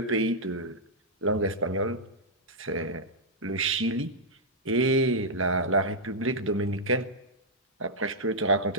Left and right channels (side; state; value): both; normal; correlation -0.08